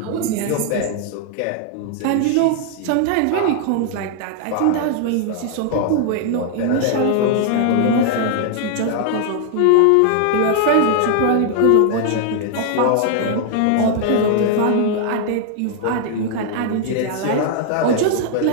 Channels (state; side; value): different; both; correlation 0.00